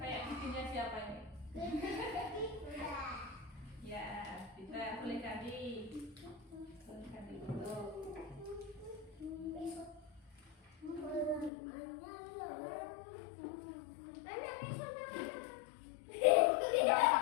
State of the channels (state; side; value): drops out; right; at 11.5 s